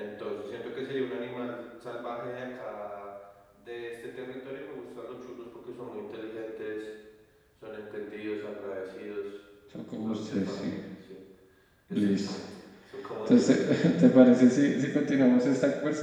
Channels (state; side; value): identical; both; correlation 1.00